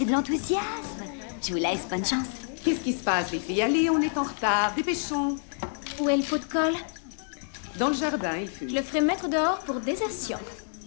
de l'enthousiasme. Je vous laisse, bonne chance. Qu'est-ce qui se passe, les filles? Allez, on est en retard. Dépêchons. Où est le pot de colle? Dans le jardin, il fut. Je le ferai mettre dehors pour désertion.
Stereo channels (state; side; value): silent; right; 59 dB below the other